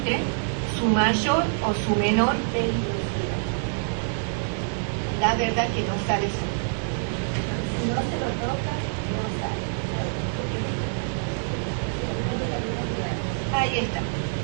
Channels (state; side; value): silent; left; 61 dB below the other